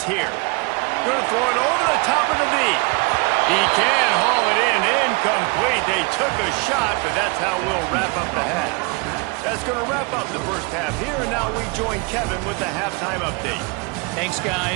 here. Going to throw it over the top of the knee. He can haul it in. Incomplete. They took a shot, but that's how we'll wrap up the half. That's going to wrap up the first half here, and now we join Kevin with the halftime update. Thanks,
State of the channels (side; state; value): left; quieter; 29.9 dB